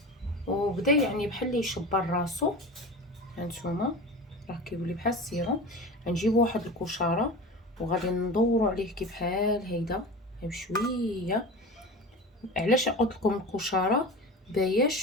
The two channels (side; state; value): both; normal; correlation 0.32